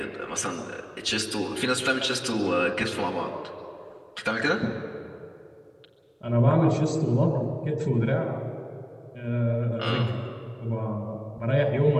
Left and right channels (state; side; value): identical; both; correlation 1.00